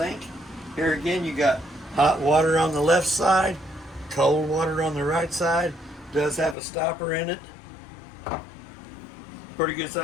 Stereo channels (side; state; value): right; drops out; at 6.6 s